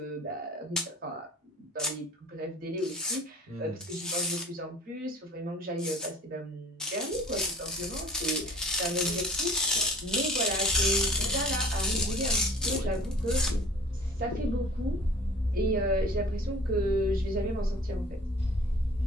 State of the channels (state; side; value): normal; both; correlation 0.47